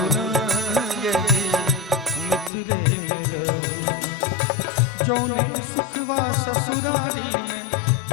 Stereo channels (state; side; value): drops out; right; at 2.5 s